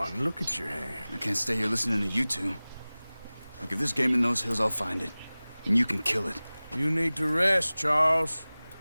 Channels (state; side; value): inverted; both; correlation -0.99